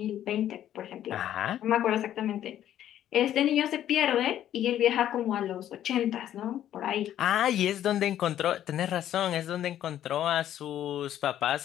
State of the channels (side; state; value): right; quieter; 11.5 dB